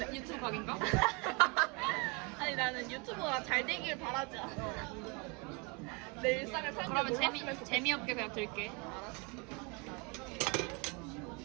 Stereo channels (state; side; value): quieter; left; 30.8 dB